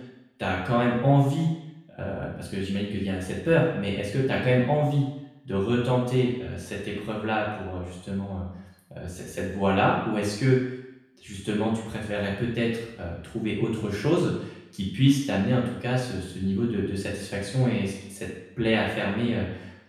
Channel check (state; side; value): identical; both; correlation 1.00